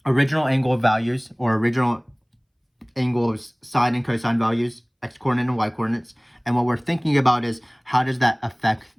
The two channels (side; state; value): both; identical; correlation 1.00